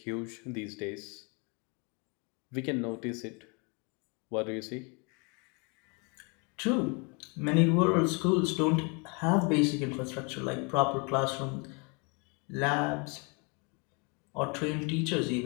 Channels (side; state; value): right; quieter; 32.3 dB